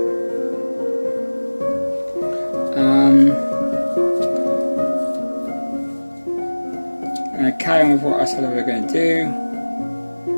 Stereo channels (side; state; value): both; inverted; correlation -1.00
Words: I'm going to carry on with what I said we were going to do.